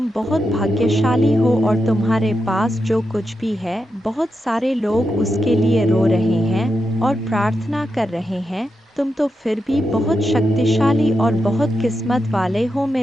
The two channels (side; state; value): both; normal; correlation 0.87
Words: बहुत भाग्यशाली हो और तुम्हारे पास जो कुछ भी है, बहुत सारे लोग उसके लिए रो रहे हैं और प्रार्थना कर रहे हैं, तुम तो फिर भी बहुत शक्तिशाली और बहुत किस्मत वाले हो